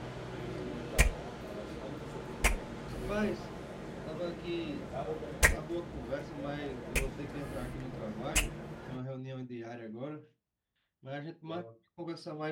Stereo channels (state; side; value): identical; both; correlation 1.00